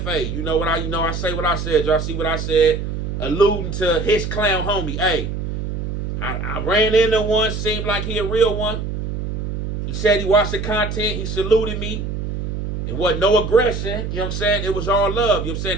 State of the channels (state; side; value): noise; right; hum, 4 dB below the sound